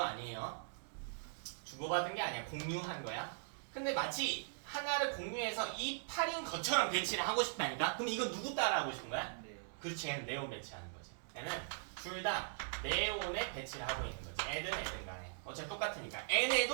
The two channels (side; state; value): left; silent; digital silence